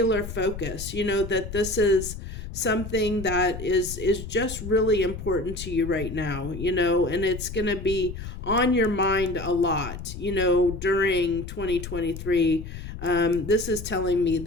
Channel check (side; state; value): left; noise; rumble, 9 dB below the sound